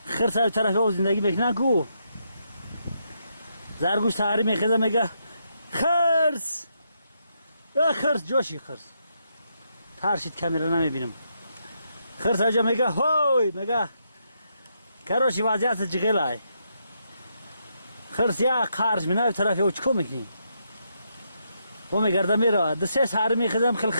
خرس ای طرفی او زندگی میکنن کو زرگوش تحری میخیزه میگه خرس خرس جوشی خرس ترشید کامیرا نمیبینم خرس اجا میگه هوی میگه کروشی وضعیت جغیل ای خرس یا خارج مینای طرفی او چکو میکنی و میگرده میره دسته سهر میخیزم خیلی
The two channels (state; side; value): inverted; both; correlation -0.79